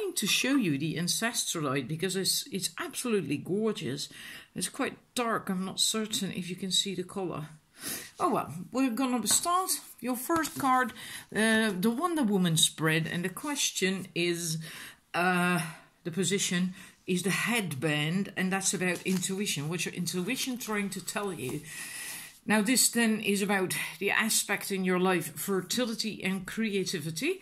to show you the Ancestralite because it's absolutely gorgeous. It's quite dark. I'm not certain if you can see the color. Oh well, we're gonna start. Your first card, the Wonder Woman spread, and the question is, the position is the headband, and that's about intuition. What's your intuition trying to tell you? Now this then is about the aspect in your life, fertility and creativity,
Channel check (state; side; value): identical; both; correlation 1.00